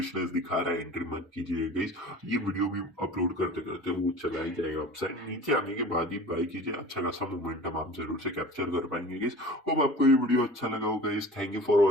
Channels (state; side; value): normal; both; correlation 0.41